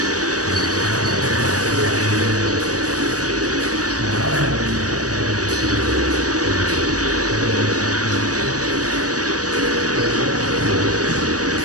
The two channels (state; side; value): late; left; 0.67 ms